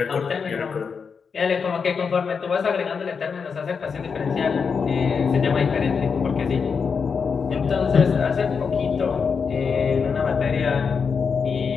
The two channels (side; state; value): right; quieter; 5.8 dB